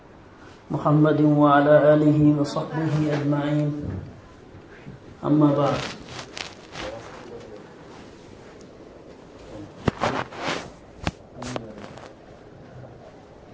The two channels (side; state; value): both; identical; correlation 1.00